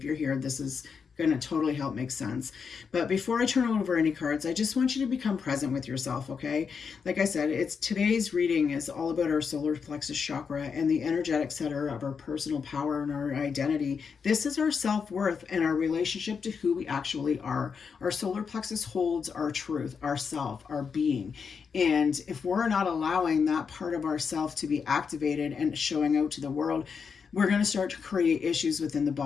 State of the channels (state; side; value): quieter; right; 6.0 dB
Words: you're here, this is going to totally help make sense. But before I turn over any cards, I just want you to become present with yourself, okay? Like I said, today's reading is all about our solar plexus chakra and the energetic center of our personal power and our identity. This is our self-worth and our relationship to who we actually are. Our solar plexus holds our truth, our self, our being. And if we're not allowing that part of ourself to be activated and showing out to the world, we're going to start to create issues within the